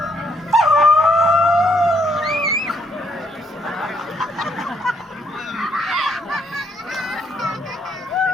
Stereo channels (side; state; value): both; normal; correlation 0.72